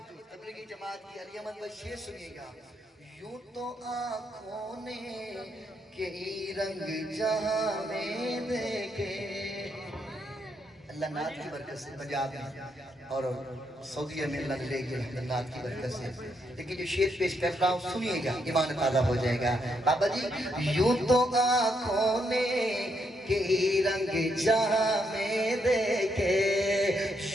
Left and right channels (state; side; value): normal; both; correlation 0.77